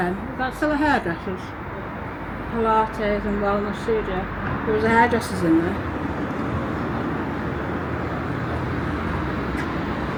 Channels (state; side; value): identical; both; correlation 1.00